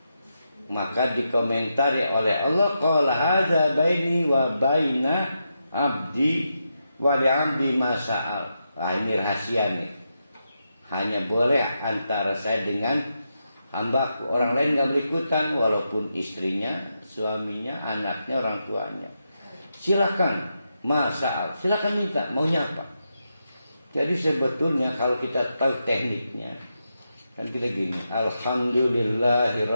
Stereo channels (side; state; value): both; inverted; correlation -0.85